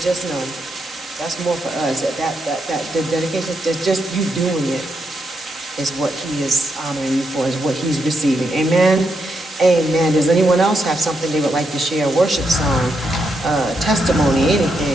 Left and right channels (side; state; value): both; normal; correlation 0.81